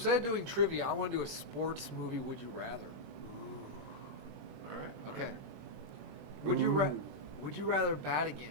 of doing trivia, I want to do a sports movie. Would you rather? All right. all Okay. right. Would you rather bat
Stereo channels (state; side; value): late; left; 21 ms